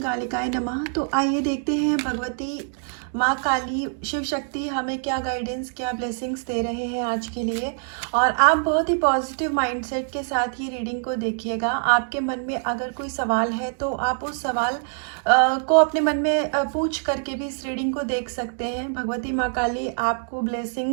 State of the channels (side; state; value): left; silent; 60 dB below the other